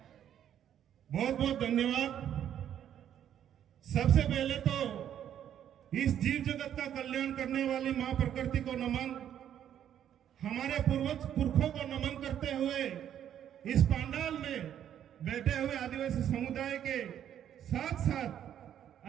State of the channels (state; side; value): quieter; left; 10.1 dB